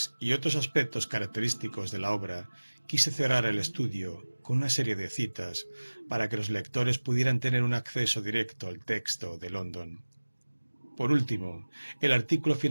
y otros aspectos característicos de la obra, quise cerrar el estudio con una serie de citas para que los lectores pudieran tener un acceso directo al texto de London. Por último, el artículo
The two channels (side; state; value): both; inverted; correlation -1.00